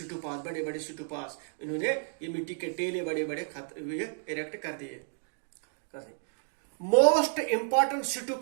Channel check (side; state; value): left; silent; digital silence